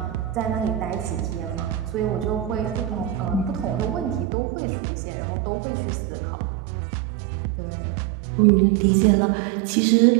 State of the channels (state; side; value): drops out; left; at 4.2 s